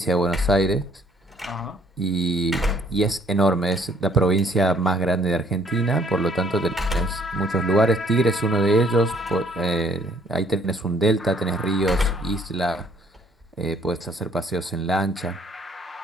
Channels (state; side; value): normal; both; correlation 0.62